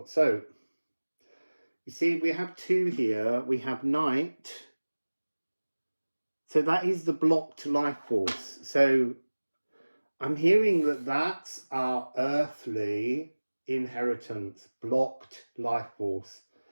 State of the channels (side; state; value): both; inverted; correlation -1.00